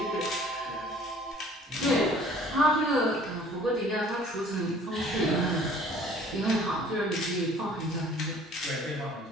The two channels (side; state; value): both; normal; correlation 0.52